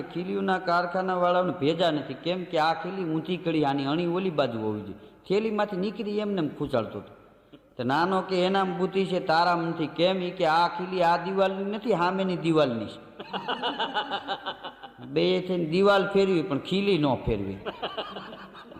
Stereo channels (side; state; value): both; identical; correlation 1.00